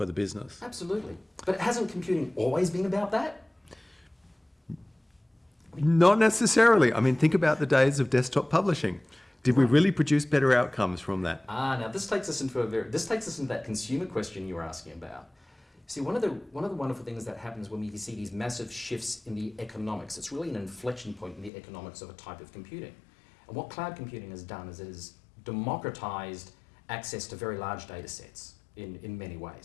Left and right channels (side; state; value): right; drops out; at 21.5 s